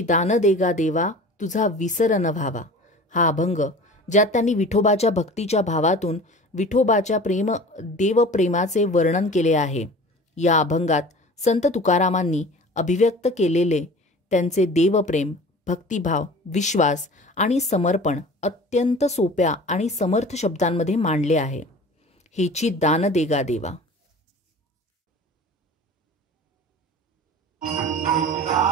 दान देगा देवा तुझा विसर न व्हावा हा अभंग, ज्यात त्यांनी विठोबाच्या भक्तीच्या भावातून विठोबाच्या देवप्रेमाचे वर्णन केले आहे. या अभंगात संत तुकारामांनी अभिव्यक्त केलेले त्यांचे देवप्रेम, भक्तिभाव, विश्वास आणि समर्पण अत्यंत सोप्या आणि समर्थ शब्दांमध्ये मांडले आहे. हेची दान देगा देवा.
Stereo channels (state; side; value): normal; both; correlation 0.40